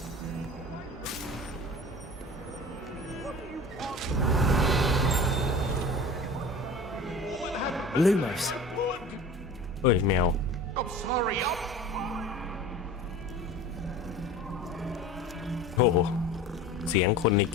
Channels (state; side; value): normal; both; correlation 0.38